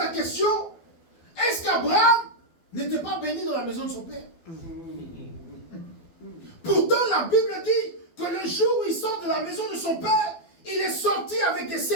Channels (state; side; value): late; right; 12 ms